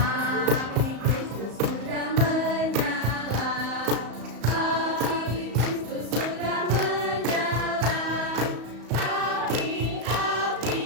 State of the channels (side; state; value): left; late; 34 ms